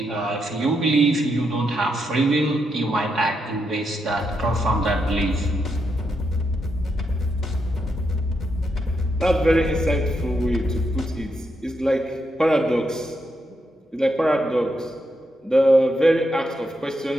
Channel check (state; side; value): normal; both; correlation 0.82